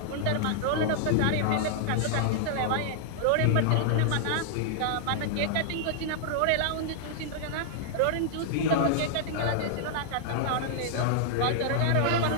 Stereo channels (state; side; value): different; both; correlation -0.01